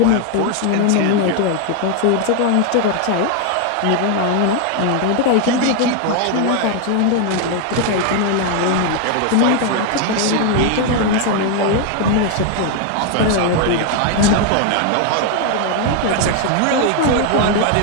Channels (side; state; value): both; different; correlation 0.01